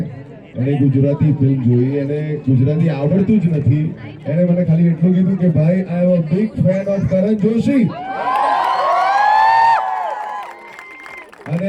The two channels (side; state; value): both; identical; correlation 1.00